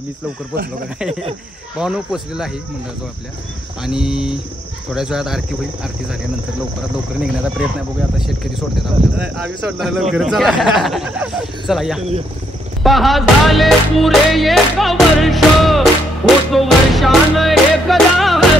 मीच लवकर पोहोचलो का काय. भावानं पोहोचलेलं आहे मंडळाजवळ आपल्या, आणि थोड्याच वेळात आरती होईल. आरती झाल्यानंतर लवकरात लवकर निघण्याचा प्रयत्न आहे. बघूया आता शेतकरी सोडतात आपल्याला. आम्ही सोडणार लवकर. चला या. पहा झाले पुरे 1 वर्ष, होतो वर्षान एकदा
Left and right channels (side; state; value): both; normal; correlation 0.74